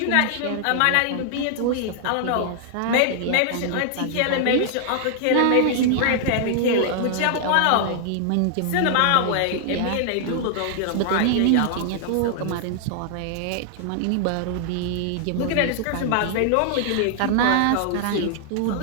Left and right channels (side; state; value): both; different; correlation 0.00